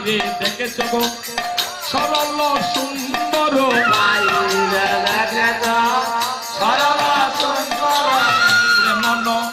দেখেছ গো সরল সুন্দর, বাহিরে দেখেছ সরল সুন্দর, মন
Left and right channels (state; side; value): identical; both; correlation 1.00